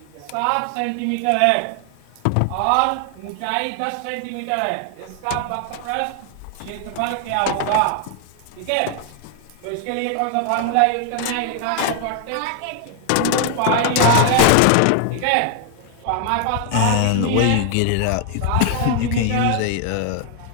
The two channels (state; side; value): different; both; correlation 0.00